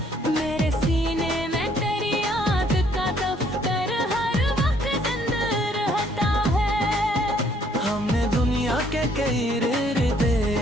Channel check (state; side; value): normal; both; correlation 0.65